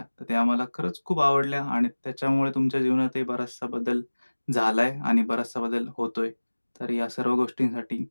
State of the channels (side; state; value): both; inverted; correlation -1.00